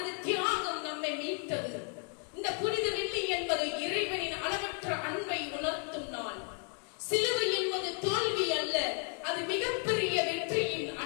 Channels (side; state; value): right; quieter; 38.8 dB